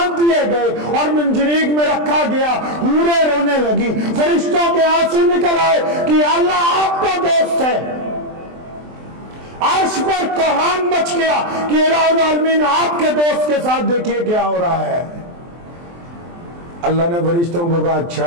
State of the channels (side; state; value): left; late; 23 ms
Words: دیے گئے اور منجنیق میں رکھا گیا، حوریں رونے لگی، فرشتوں کے آنسو نکل آئے کہ اللہ آپ کا دوست ہے۔ عرش پر کوہان مچ گیا کہ الہ العالمین آپ کے دوست کے ساتھ دیکھیے کیا ہو رہا ہے۔ اللہ نے فرشتوں کو کہا